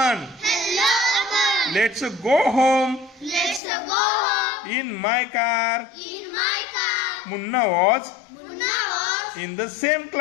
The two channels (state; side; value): drops out; right; at 3.6 s